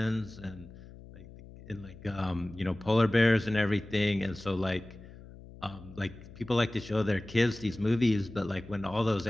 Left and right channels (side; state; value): left; noise; hum, 18 dB below the sound